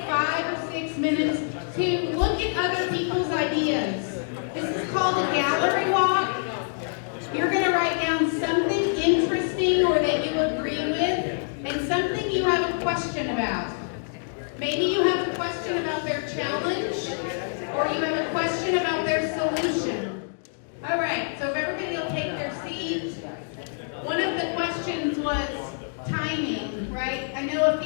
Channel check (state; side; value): silent; right; digital silence